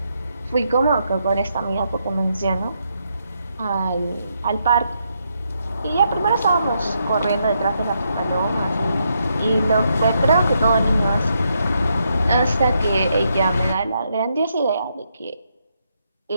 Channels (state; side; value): inverted; both; correlation -0.79